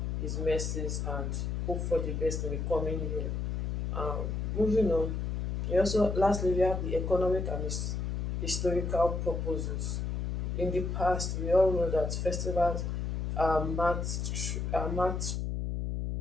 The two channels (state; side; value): noise; left; hum, 1 dB below the sound